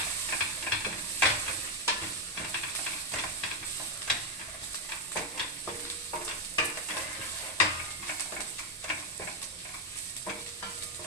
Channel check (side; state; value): both; normal; correlation 0.03